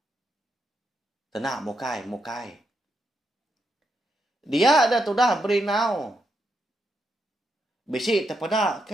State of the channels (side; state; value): both; normal; correlation 0.82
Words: Tenang mukai. Dia ada tudah berinau. Bisi terpedak